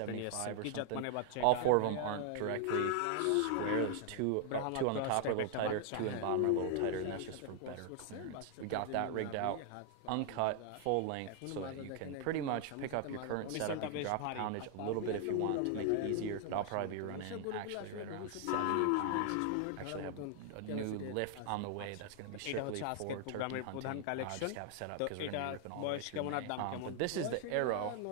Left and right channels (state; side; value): different; both; correlation 0.00